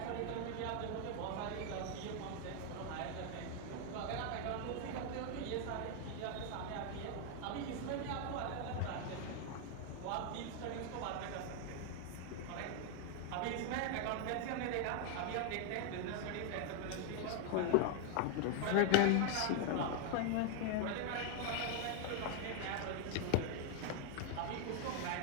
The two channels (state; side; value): different; both; correlation 0.00